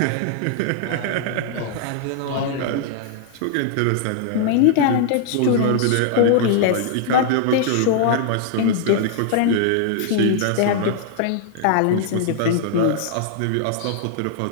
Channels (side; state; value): both; different; correlation -0.01